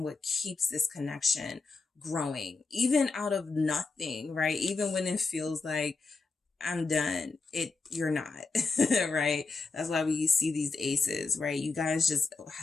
what keeps this connection growing, even out of nothing, right? Even when it feels like I'm done, you're not, right? That's why we see these aces, right? You guys just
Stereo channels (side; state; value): right; quieter; 4.0 dB